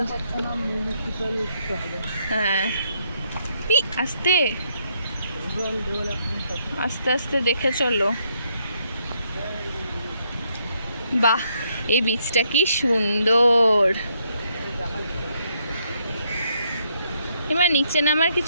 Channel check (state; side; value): inverted; both; correlation -0.74